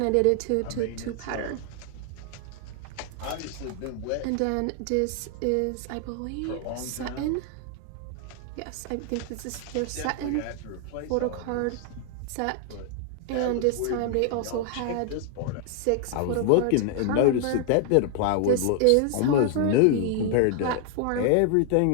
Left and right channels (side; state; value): both; different; correlation 0.00